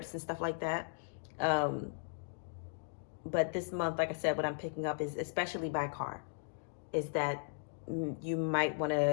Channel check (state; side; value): silent; right; digital silence